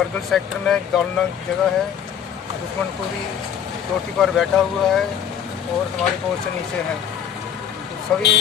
सेक्टर में गालनग जगह है, दुश्मन पूरी चोटी पर बैठा हुआ है और हमारी पोस्ट नीचे है। तो सभी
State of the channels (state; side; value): quieter; right; 8.7 dB